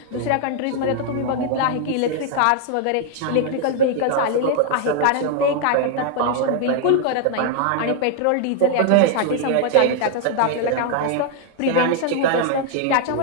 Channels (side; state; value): both; different; correlation 0.00